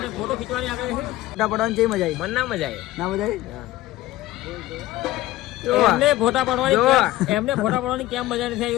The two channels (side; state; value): right; quieter; 16.1 dB